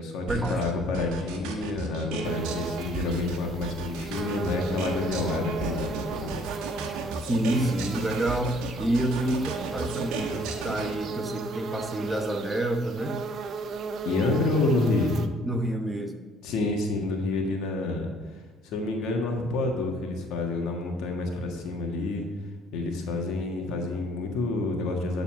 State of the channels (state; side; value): normal; both; correlation 0.59